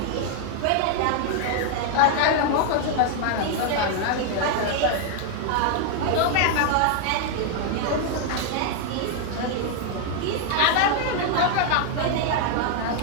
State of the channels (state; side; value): different; both; correlation 0.00